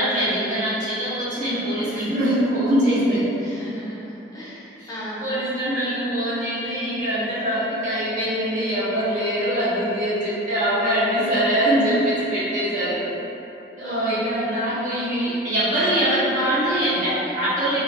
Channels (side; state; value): both; normal; correlation 0.32